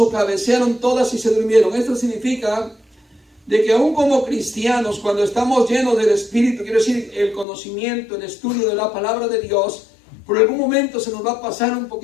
cabecearon todas y se durmieron. Esto significa de que aún como cristianos, cuando estamos llenos del Espíritu, quiero decir, el conocimiento, el estudio de la palabra de Dios, por algún momento se nos va a pasar un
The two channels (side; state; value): right; drops out; at 7.5 s